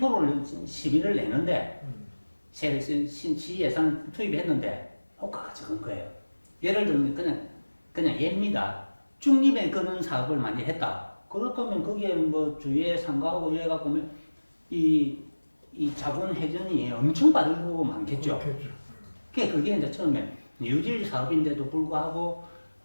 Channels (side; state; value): both; inverted; correlation -1.00